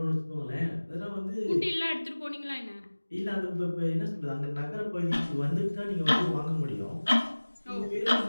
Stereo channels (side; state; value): both; inverted; correlation -1.00